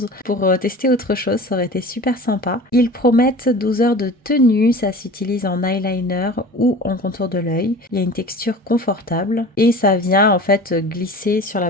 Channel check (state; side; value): normal; both; correlation 0.38